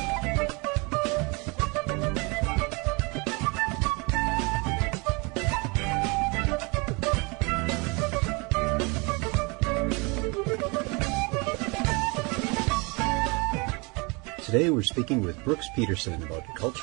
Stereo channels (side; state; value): left; quieter; 28.9 dB